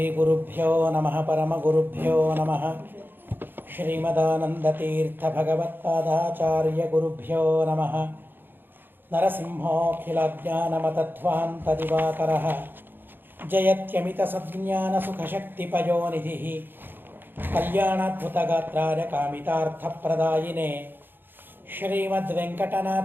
ಗುರುಭ್ಯೋ ನಮಃ ಪರಮಗುರುಭ್ಯೋ ನಮಃ ಶ್ರೀಮದಾನಂದತೀರ್ಥ ಭಗವತ್ಪಾದಾಚಾರ್ಯ ಗುರುಭ್ಯೋ ನಮಃ ನರಸಿಂಹೋಖಿಲಜ್ಞಾನಮತಧ್ವಾಂತದಿವಾಕರಃ ಜಯತ್ಯಮಿತಸಜ್ಞಾನಸುಖಶಕ್ತಿಪಯೋನಿಧಿಃ ಕಲ್ಯಾಣಾದ್ಭುತಗಾತ್ರಾಯ ಕಾಮಿತಾರ್ಥಪ್ರದಾಯಿನೇ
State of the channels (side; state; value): left; late; 0.097 ms